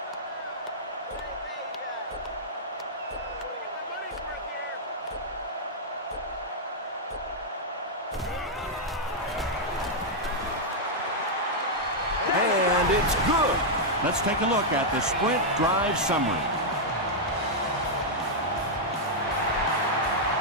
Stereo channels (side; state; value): both; normal; correlation -0.04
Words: And it's good. Let's take a look at the Sprint drive summary.